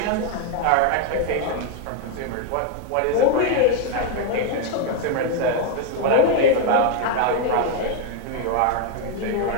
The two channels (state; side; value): different; both; correlation 0.00